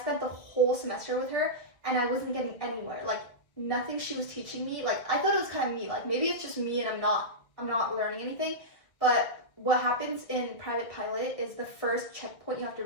the whole semester with her, and I wasn't getting anywhere. Like, nothing she was teaching me. Like, I thought it was kind of me. Like, maybe it's just me, and I'm not learning anything. But what happens in private pilot is the first checkpoint you have to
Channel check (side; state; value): right; late; 1.8 ms